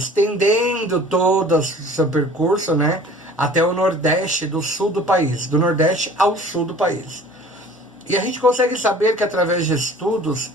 todo o seu percurso, né, até o nordeste do sul do país, do nordeste ao sul do país. E a gente consegue saber que através de estudos,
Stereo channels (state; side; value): normal; both; correlation 0.47